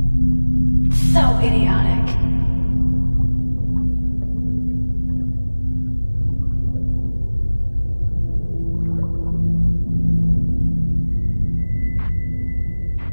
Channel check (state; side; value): inverted; both; correlation -1.00